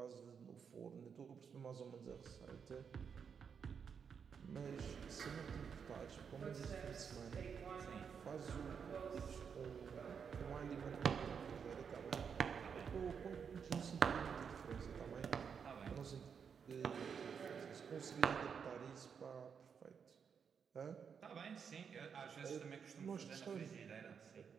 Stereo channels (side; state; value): left; quieter; 6.7 dB